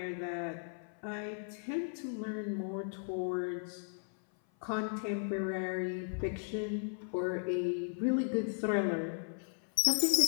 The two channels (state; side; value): silent; right; 54 dB below the other